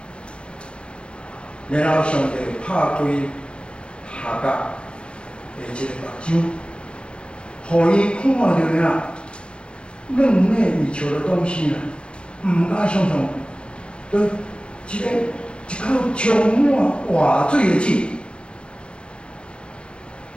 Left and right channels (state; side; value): late; right; 0.057 ms